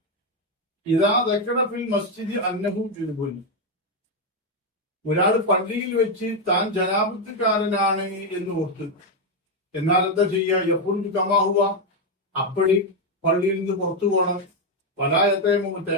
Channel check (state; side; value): normal; both; correlation 0.04